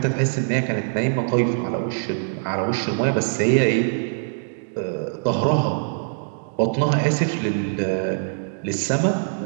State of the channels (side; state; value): left; silent; digital silence